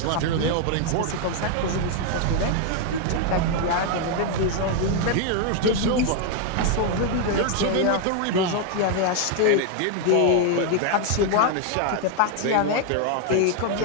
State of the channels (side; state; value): both; different; correlation 0.00